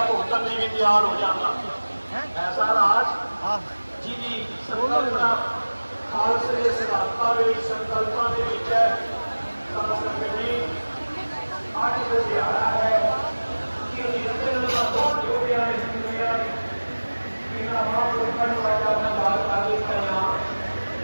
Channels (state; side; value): inverted; both; correlation -1.00